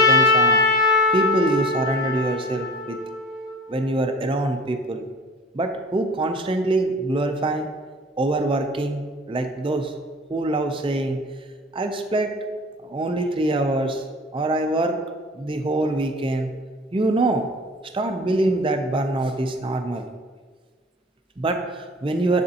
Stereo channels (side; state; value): both; normal; correlation 0.41